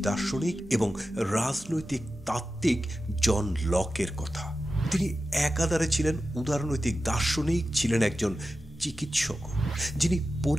দার্শনিক এবং রাজনৈতিক তাত্ত্বিক জন লকের কথা। তিনি একাধারে ছিলেন উদারনৈতিক দার্শনিক, ছিলেন একজন চিকিৎসক, যিনি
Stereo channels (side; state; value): both; normal; correlation 0.93